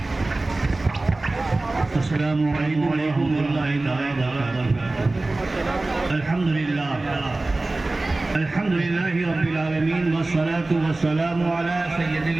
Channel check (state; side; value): quieter; left; 3.0 dB